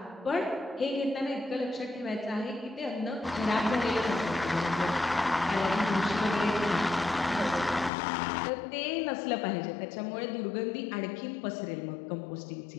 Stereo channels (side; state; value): right; drops out; at 7.9 s